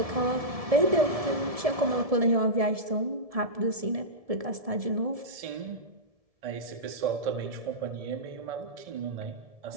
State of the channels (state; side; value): late; left; 1.7 ms